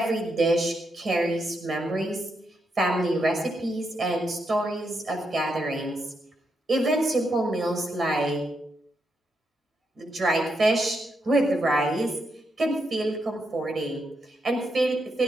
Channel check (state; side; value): normal; both; correlation 0.82